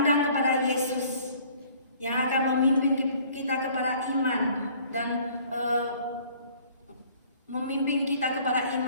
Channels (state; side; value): inverted; both; correlation -0.55